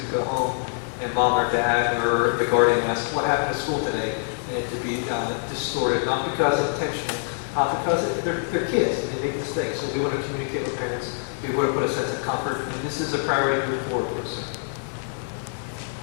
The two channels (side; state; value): right; silent; digital silence